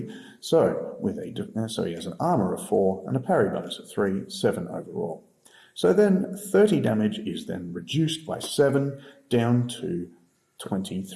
So he has an armour of 4 and a parry bonus of 3, 7 overall. So then 30 damage is then reduced by 7 down to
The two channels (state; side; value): identical; both; correlation 1.00